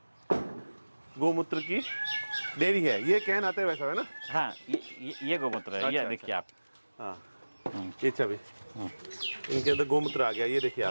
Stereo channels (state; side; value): inverted; both; correlation -1.00